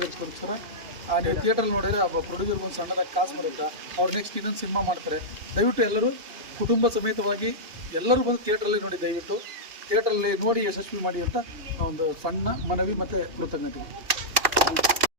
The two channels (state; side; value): late; left; 2.9 ms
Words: ನೀವು ಥಿಯೇಟ್ರಲ್ಲಿ ನೋಡಿದರೆ ಆ ಪ್ರೊಡ್ಯೂಸರ್ಗೆ ಒಂದು ಸಣ್ಣದಾಗಿ ಕಾಸು ಬರುತ್ತೆ. ಅವ್ರು ನೆಕ್ಸ್ಟ್ ಇನ್ನೊಂದು ಸಿನಿಮಾ ಮಾಡ್ತಾರೆ. ದಯವಿಟ್ಟು ಎಲ್ಲರೂ ಕುಟುಂಬ ಸಮೇತವಾಗಿ ಎಲ್ಲರೂ ಬಂದು ಥಿಯೇಟ್ರಲ್ಲಿ ನೋಡಿ. ದಯವಿಟ್ಟು ಥಿಯೇಟ್ರಲ್ಲಿ ನೋಡಿ ಯಶಸ್ವಿ ಮಾಡಿ ಅಂತ ಒಂದು ಸಣ್ಣ ಮನವಿ ಮತ್ತು ಕೃತಜ್ಞತೆ.